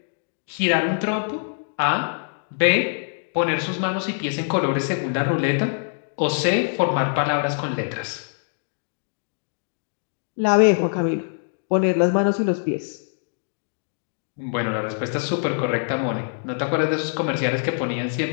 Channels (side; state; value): right; silent; digital silence